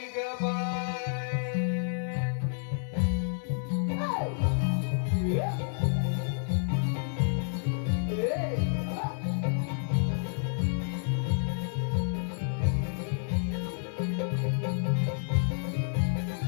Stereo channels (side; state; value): right; silent; digital silence